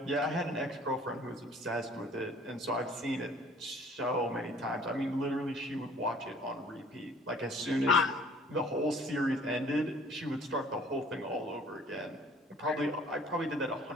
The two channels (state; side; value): normal; both; correlation 0.53